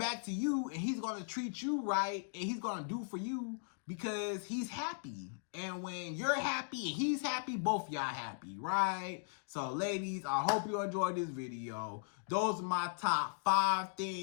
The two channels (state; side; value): silent; right; digital silence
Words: to you, and he's going to treat you right, and he's going to do for you because he's happy. And when you're happy and he's happy, both y'all happy, right? So ladies, I hope you enjoyed this video. Those are my top 5